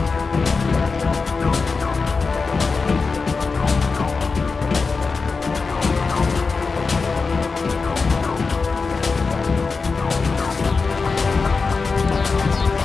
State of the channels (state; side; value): quieter; right; 4.5 dB